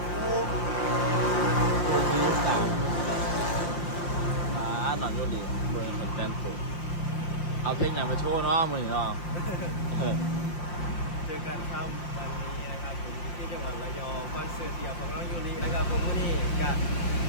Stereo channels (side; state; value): right; late; 5.7 ms